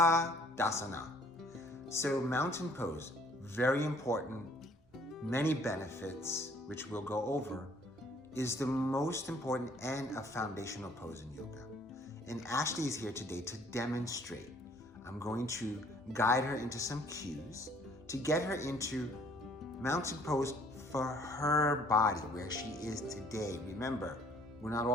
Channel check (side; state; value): both; normal; correlation 0.59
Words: So mountain pose, very important, many benefits, which we'll go over, is the most important and a foundational pose in yoga. And Ashley is here today to demonstrate. I'm going to guide her into some cues to get her into mountain pose for her body, where she is today. Remember, we're not